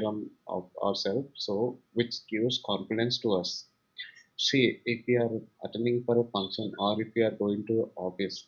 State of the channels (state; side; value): identical; both; correlation 1.00